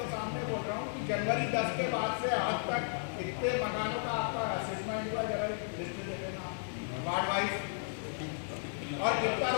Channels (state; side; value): silent; right; digital silence